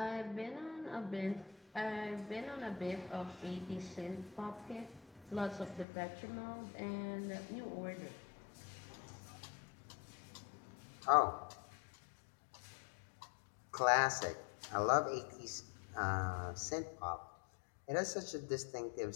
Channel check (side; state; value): right; drops out; at 5.9 s